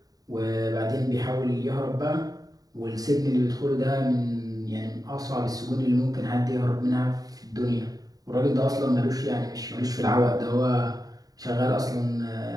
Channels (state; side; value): late; left; 0.18 ms